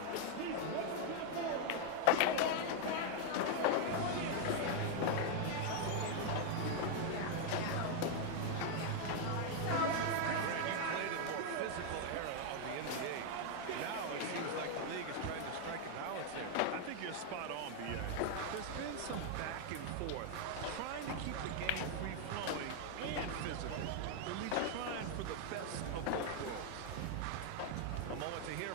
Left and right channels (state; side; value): different; both; correlation 0.00